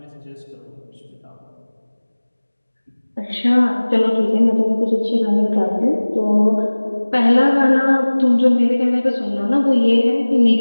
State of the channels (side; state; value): both; inverted; correlation -1.00